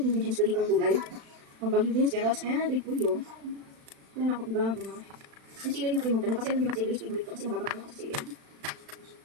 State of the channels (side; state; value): left; late; 36 ms